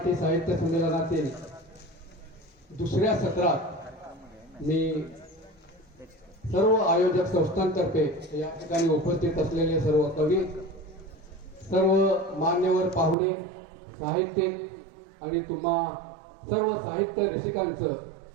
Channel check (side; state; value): left; drops out; at 13.2 s